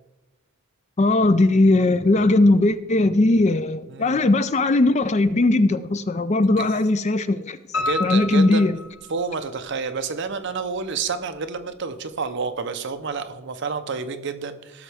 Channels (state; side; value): normal; both; correlation 0.67